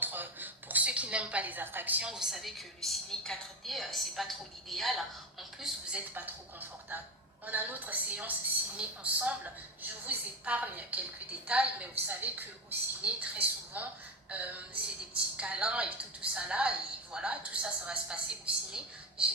Pour ceux qui n'aiment pas les attractions, vous savez que le ciné 4D, c'est pas trop l'idéal. En plus, vous n'êtes pas trop confortable. On a notre séance ciné ensemble. Je vous épargne quelques détails, mais vous savez qu'au ciné, très souvent, c'est des petits câlins et tout ça là, et voilà, tout ça, ça va se passer au ciné.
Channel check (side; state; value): both; normal; correlation 0.21